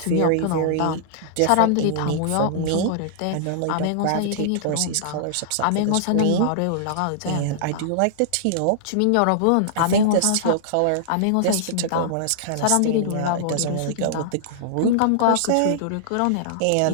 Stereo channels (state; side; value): different; both; correlation -0.01